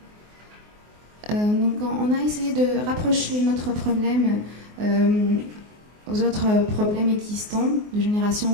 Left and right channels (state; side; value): late; left; 24 ms